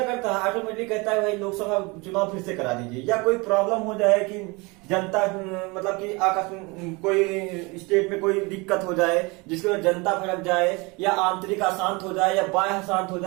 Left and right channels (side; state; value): left; quieter; 26.8 dB